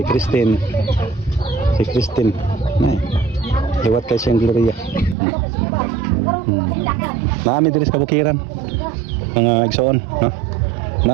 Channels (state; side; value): drops out; left; at 5.2 s